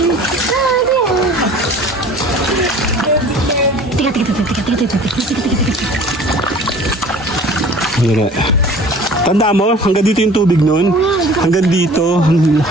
Tanda mo, hanggang dito yung tubig nun. Hanggang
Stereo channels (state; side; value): normal; both; correlation 0.46